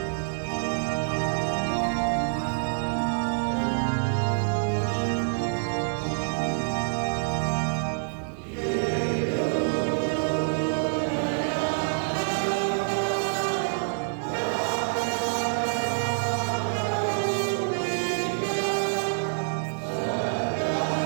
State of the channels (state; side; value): silent; left; digital silence